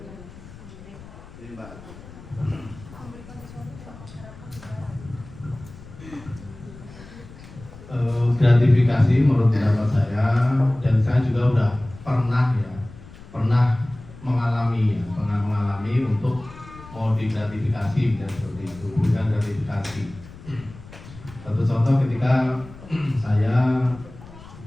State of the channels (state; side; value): noise; left; rumble, 18 dB below the sound